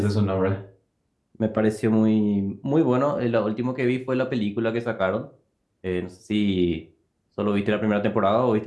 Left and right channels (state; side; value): identical; both; correlation 1.00